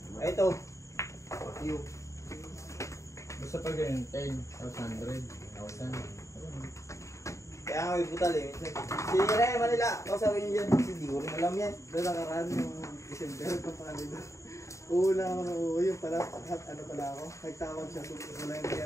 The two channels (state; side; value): late; right; 0.15 ms